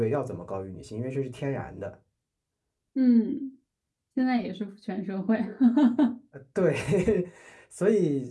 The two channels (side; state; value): both; identical; correlation 1.00